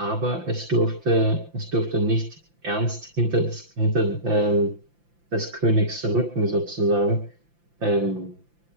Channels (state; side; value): late; left; 5.8 ms